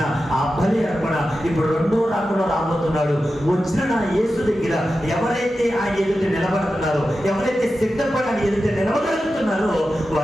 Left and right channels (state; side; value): normal; both; correlation 0.92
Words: ఆ బలి అర్పణ ఇప్పుడు 2వ రాకడలో రాబోతున్నాడు. వచ్చిన నా యేసు దగ్గర ఎవరైతే ఆయన ఎదుట నిలబడుతున్నారో, ఎవరైతే సిద్ధపడి ఆయన ఎదుట నిలబడగలుగుతున్నారో